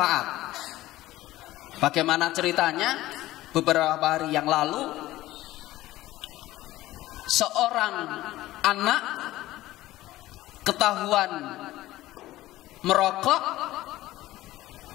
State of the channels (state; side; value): quieter; right; 16.3 dB